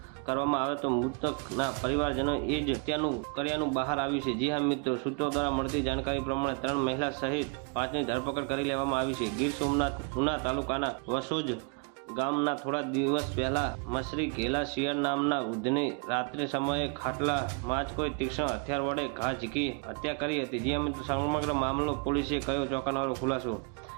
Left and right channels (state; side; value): quieter; left; 34.7 dB